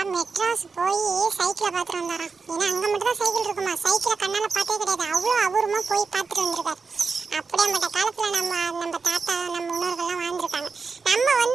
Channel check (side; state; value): left; quieter; 4.8 dB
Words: மெட்ராஸ் போய் சைக்கிளை பார்த்துட்டு வந்தாராம். ஏன்னா அங்கே மட்டும் தான் சைக்கிள் இருக்குமா, சைக்கிளை கண்ணால் பார்த்தே கிடையாது. அவ்வளோ அபூர்வமாக போய் பார்த்துட்டு வந்திருக்காரு. அப்படியேப்பட்ட காலத்தில் நம்ம தாத்தா நம்ம முன்னோர்கள்லாம் வாழ்ந்துருக்காங்க.